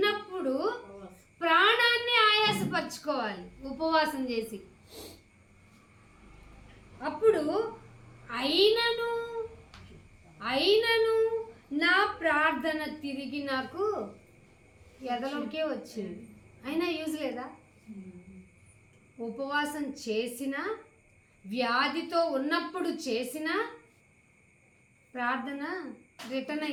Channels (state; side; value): identical; both; correlation 1.00